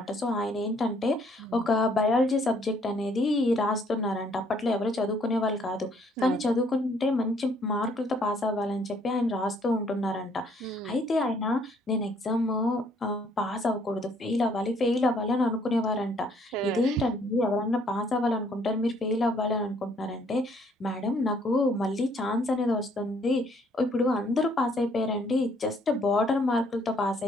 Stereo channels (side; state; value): both; normal; correlation 0.65